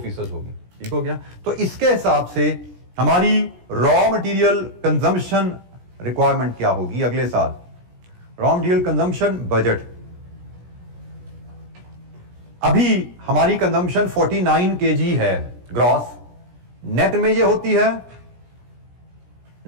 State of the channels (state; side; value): late; left; 17 ms